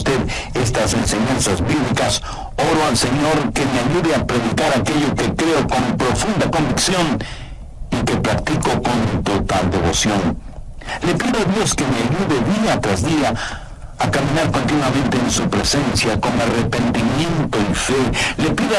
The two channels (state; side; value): identical; both; correlation 1.00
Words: estas enseñanzas bíblicas, oro al Señor que me ayude a predicar aquello que creo con profunda convicción y que practico con total devoción. Le pido a Dios que me ayude día tras día a caminar continuamente en su presencia con arrepentimiento y fe. Le pido